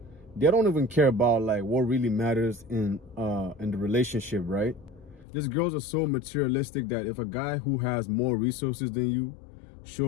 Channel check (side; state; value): right; drops out; at 5.2 s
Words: they don't even care about like what really matters in the relationship, right? These girls are so materialistic that if a guy who has more resources than you